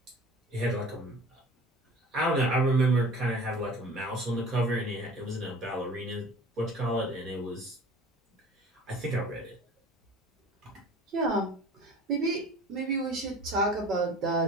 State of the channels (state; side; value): normal; both; correlation 0.43